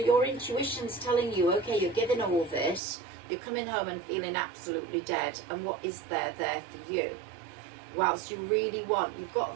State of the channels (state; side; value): drops out; left; at 2.8 s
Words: intuition's telling you, okay, you're giving all this. You're coming home and feeling absolutely dead. And what is there for you? Whilst you really want, you've got